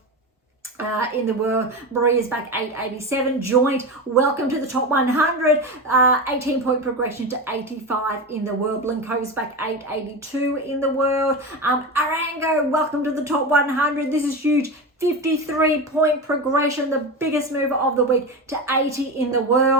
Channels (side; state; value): both; normal; correlation 0.22